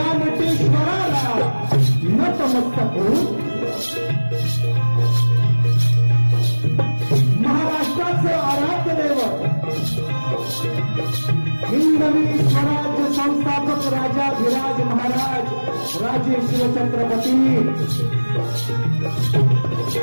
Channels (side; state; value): both; inverted; correlation -1.00